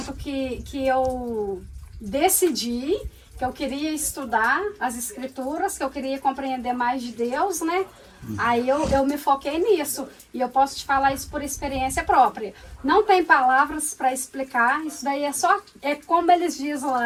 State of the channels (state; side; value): identical; both; correlation 1.00